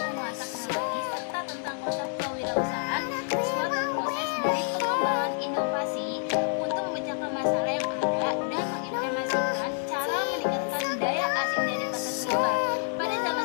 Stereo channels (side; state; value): right; silent; digital silence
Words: teknologi serta tentang konsep kewirausahaan, suatu proses dari pengembangan inovasi untuk memecahkan masalah yang ada dan mengimplementasikan cara meningkatkan daya asing dari pasar global. Pada zaman